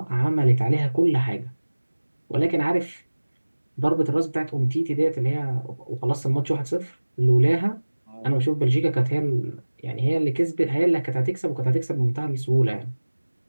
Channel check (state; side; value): inverted; both; correlation -1.00